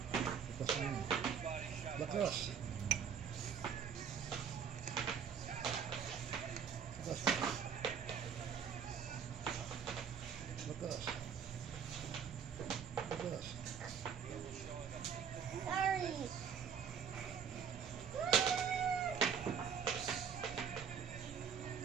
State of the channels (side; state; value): left; quieter; 7.2 dB